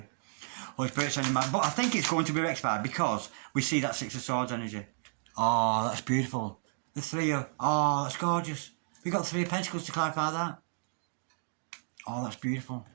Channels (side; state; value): left; silent; digital silence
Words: Holy Spirit sending my... But I think it's going to be rectified because we see that Six of Swords energy. Oh, that's beautiful. The Three of... Oh, that's gorgeous. We got Three of Pentacles to clarify that. Oh, that's beautiful.